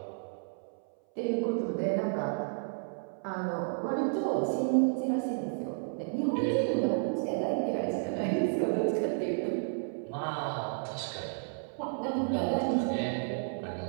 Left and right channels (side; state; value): left; silent; 57 dB below the other